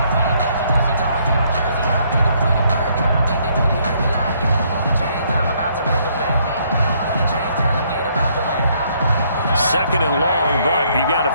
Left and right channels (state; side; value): inverted; both; correlation -0.68